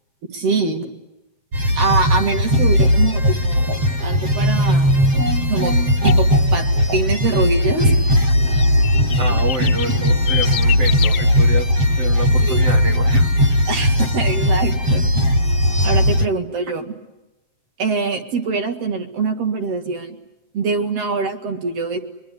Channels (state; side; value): late; left; 7.7 ms